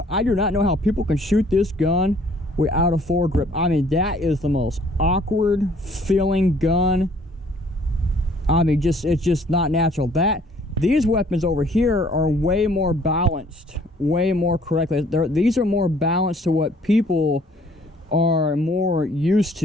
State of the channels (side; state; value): both; normal; correlation 0.59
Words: I do not know how people can shoot this gun without a foregrip. I mean, that is the most awkward feeling gun. I mean, it's just not natural. These weapons over here are way more balanced, way more correctly. These are more balanced to what people are more used